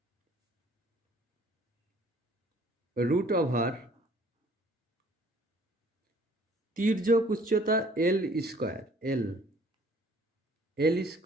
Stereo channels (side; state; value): both; normal; correlation 0.56